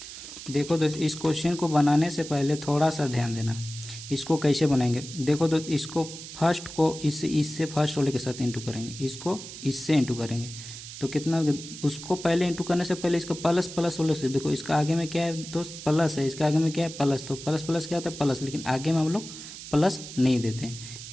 देखो दोस्त, इस क्वेश्चन को बनाने से पहले थोड़ा सा ध्यान देना, इसको कैसे बनाएंगे। देखो दोस्त, इसको फर्स्ट को इससे फर्स्ट वाले के साथ इंटू करेंगे, इसको इससे इंटू करेंगे, तो कितना उसको पहले इंटू करने से पहले इसका प्लस प्लस वाले से देखो, इसका आगे में क्या है दोस्त प्लस है, इसके आगे में क्या है प्लस, तो प्लस प्लस क्या होता है प्लस, लेकिन आगे में हम लोग प्लस नहीं देते हैं,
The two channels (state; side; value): noise; right; hiss, 12 dB below the sound